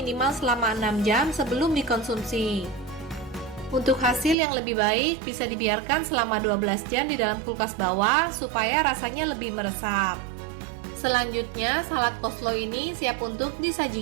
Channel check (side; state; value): left; drops out; at 4.4 s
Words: selama 6 jam sebelum dikonsumsi. Untuk hasil yang lebih baik, bisa dibiarkan selama 12 jam di dalam kulkas bawah supaya rasanya lebih meresap. Selanjutnya, salad coleslaw ini siap untuk